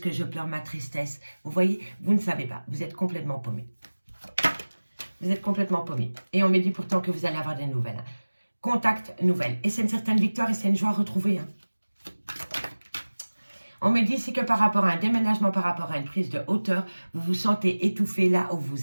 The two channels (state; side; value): inverted; both; correlation -1.00